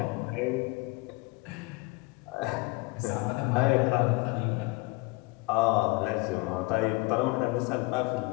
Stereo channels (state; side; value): quieter; right; 24.1 dB